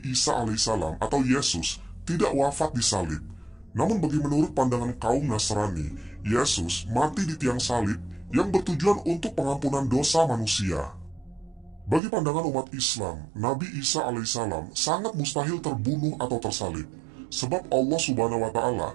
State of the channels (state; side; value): drops out; left; at 12.0 s